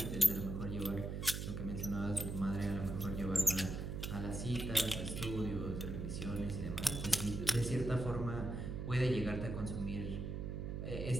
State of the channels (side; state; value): right; noise; hum, 4 dB below the sound